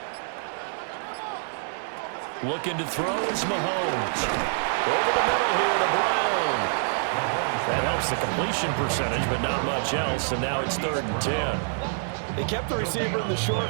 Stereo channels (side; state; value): left; silent; 61 dB below the other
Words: Looking to throw is Mahomes. Over the middle here to Brown. That helps the completion percentage, but not much else, and now it's 3rd and 10. They kept the receiver in the short